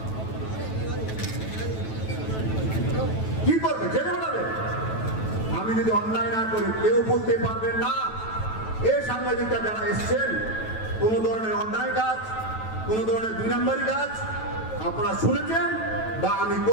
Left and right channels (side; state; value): right; late; 9.2 ms